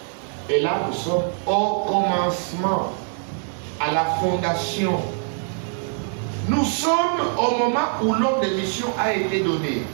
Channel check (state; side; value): silent; left; 55 dB below the other